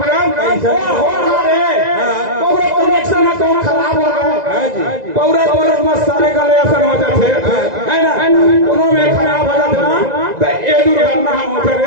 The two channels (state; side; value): late; left; 2.0 ms